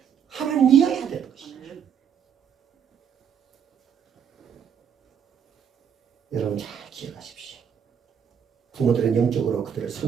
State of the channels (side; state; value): left; quieter; 7.9 dB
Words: 하나님이어야 되는 것이죠. 여러분 잘 기억하십시오. 부모들은 영적으로 그들을